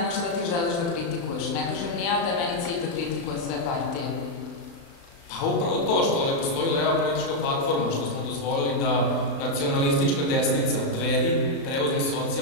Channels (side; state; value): right; late; 36 ms